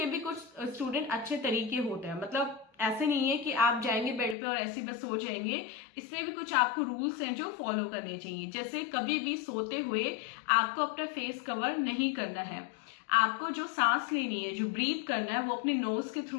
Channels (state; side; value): drops out; right; at 4.4 s